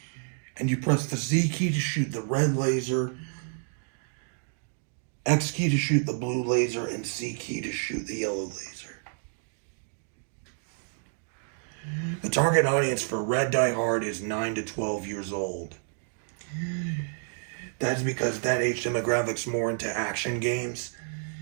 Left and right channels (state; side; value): silent; left; 58 dB below the other